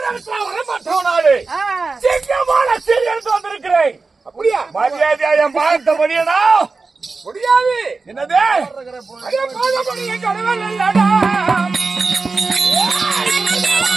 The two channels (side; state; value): left; quieter; 4.1 dB